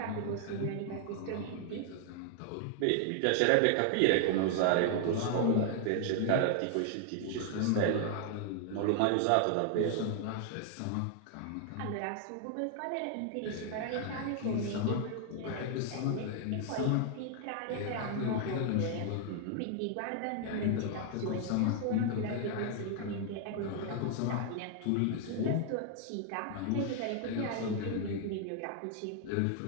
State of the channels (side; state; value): both; different; correlation 0.00